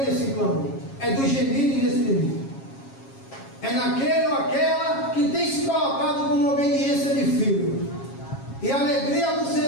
nesse clamor. É do gemido inexprimível. É naquele ou aquela que tem se colocado como obediência de filho. E a alegria do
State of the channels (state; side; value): late; right; 7.3 ms